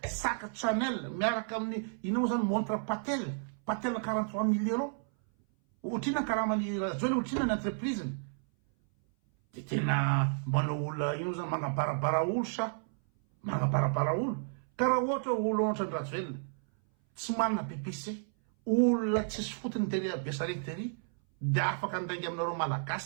sac Chanel miaraka amin'ny ina moa zany montre Patel 43 000 euros ohatrina karamany Rajoelina ohatrina ny entreprise de tena manao olona ino zany manabarabara olo sa manabarabara olo karaha ohatra olo ohatrany Rajoelina tsy manana pipise olona tsisy fotony tery Besarety tery de afaka andainga aminareo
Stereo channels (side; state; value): left; silent; 56 dB below the other